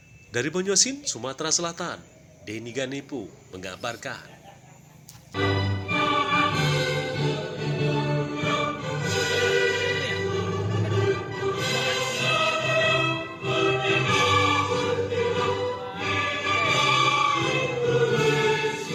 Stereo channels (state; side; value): identical; both; correlation 1.00